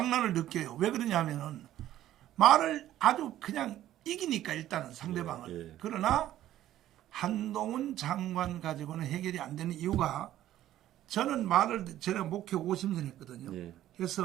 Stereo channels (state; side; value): quieter; left; 13.0 dB